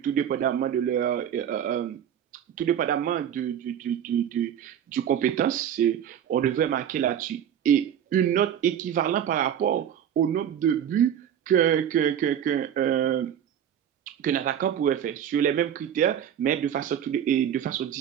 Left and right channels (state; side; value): quieter; left; 9.4 dB